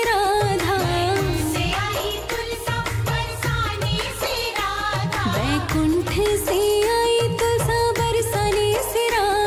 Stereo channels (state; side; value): identical; both; correlation 1.00